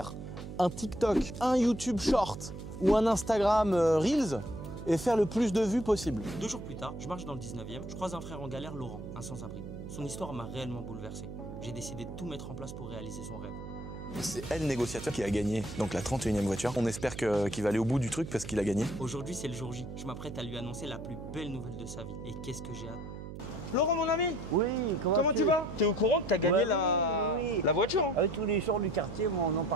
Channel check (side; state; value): right; noise; hum, 10 dB below the sound